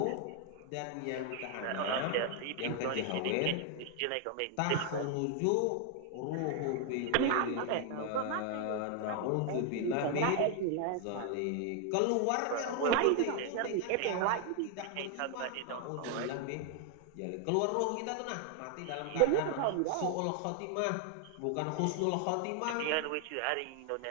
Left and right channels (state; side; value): different; both; correlation 0.00